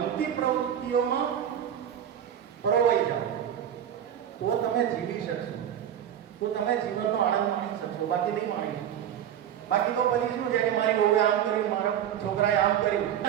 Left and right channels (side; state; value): left; quieter; 9.9 dB